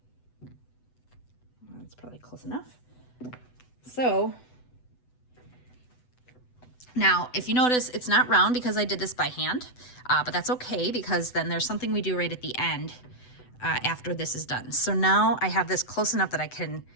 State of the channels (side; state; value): right; late; 8.0 ms